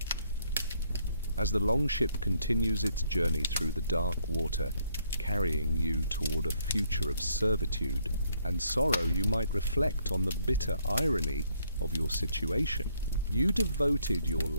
As the longship continues its journey through the dark water, carrying you toward a future of servitude and sorrow, you might reflect on the bitter irony of your situation. You devoted your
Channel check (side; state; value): both; inverted; correlation -0.70